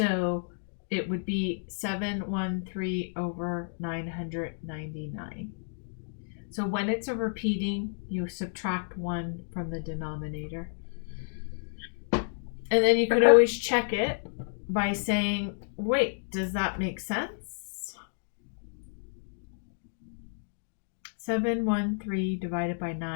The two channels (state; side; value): silent; right; digital silence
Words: it would be 713 over 999. So when it's a repeating, you subtract 1 from the denominator. And then you could always check it by saying, wait, does that make sense? 713 divided by